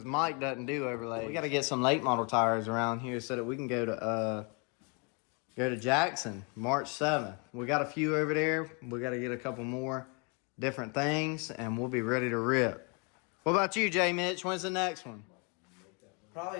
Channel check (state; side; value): quieter; right; 34.1 dB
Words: Mike doesn't do overlays. We got to get some late model tires around here so that we can go to Jackson March 7th. We got a few over there. We got to get a couple more different things, and we'll be ready to rip. What about you, J Mitch? When's the next one?